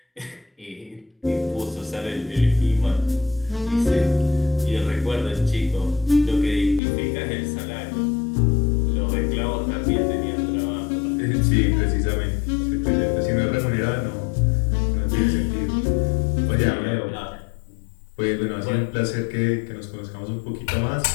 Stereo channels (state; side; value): drops out; right; at 6.8 s